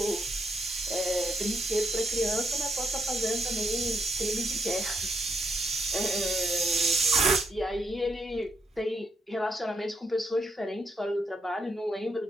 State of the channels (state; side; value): normal; both; correlation 0.76